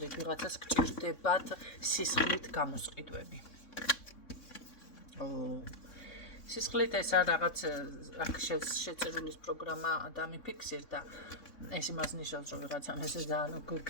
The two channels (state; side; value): late; right; 3.6 ms